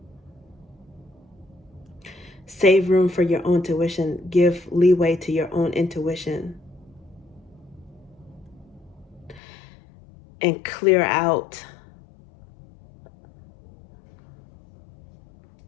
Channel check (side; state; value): right; drops out; at 9.4 s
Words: Save room for your own intuition. Give leeway to your own intuition. And clear out